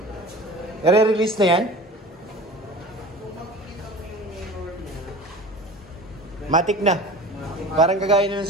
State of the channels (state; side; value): normal; both; correlation 0.37